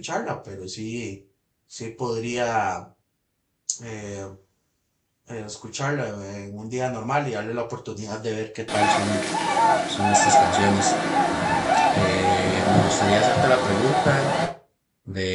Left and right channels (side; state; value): both; identical; correlation 1.00